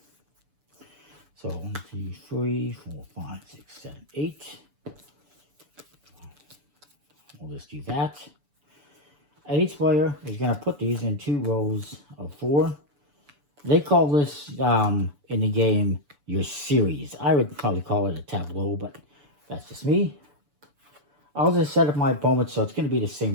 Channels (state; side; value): late; left; 6.9 ms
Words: So 1, 2, 3, 4, 5, 6, 7, 8. We'll just do that. And each player is going to put these in 2 rows of 4. They call this, in the game, your series. I would probably call it a tableau, but that's just me. I'll just set up my opponents, so it's going to be the same